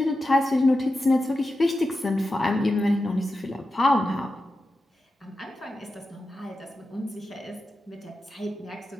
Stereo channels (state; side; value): normal; both; correlation 0.91